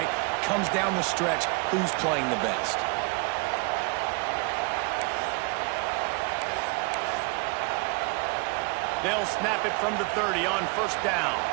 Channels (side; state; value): left; quieter; 30.8 dB